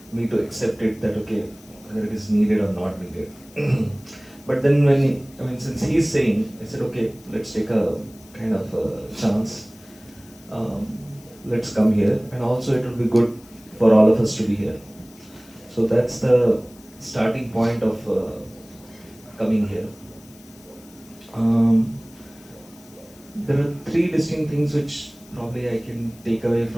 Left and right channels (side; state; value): left; noise; hiss, 24 dB below the sound